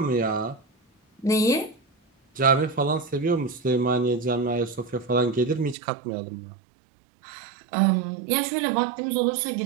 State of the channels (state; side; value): drops out; left; at 5.8 s